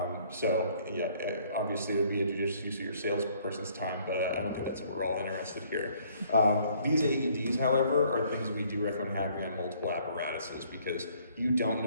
Obviously it would be a judicious use of your salesperson's time, but I don't think that's what we're all interested here. These AEDs, however, are things we do recommend having on multiple apparatuses because you don't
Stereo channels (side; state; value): both; inverted; correlation -0.62